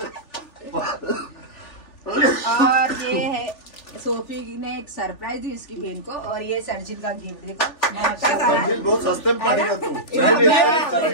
और ये है सोफी ने एक सरप्राइज दी इसकी बहन को। और ये सर्जिल का गिफ्ट देखो। सर्जिल बहुत सस्ते में पड़ेगा तू।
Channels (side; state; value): right; late; 3.4 ms